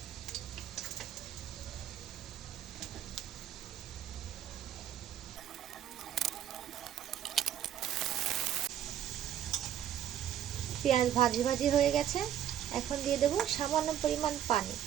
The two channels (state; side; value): quieter; left; 10.7 dB